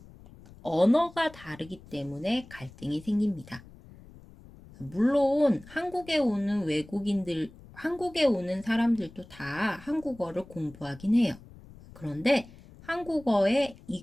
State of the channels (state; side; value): noise; left; rumble, 21 dB below the sound